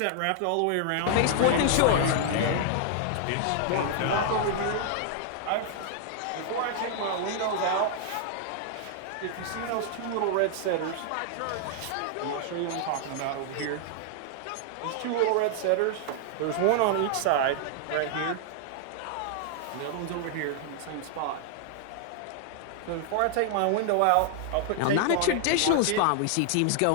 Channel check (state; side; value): different; both; correlation 0.00